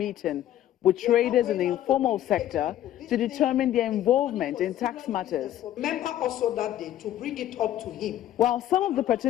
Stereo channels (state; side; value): quieter; right; 12.5 dB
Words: with traders in the informal sector to determine their involvement in tax matters. Remember also that day to bring it up to him. While some of the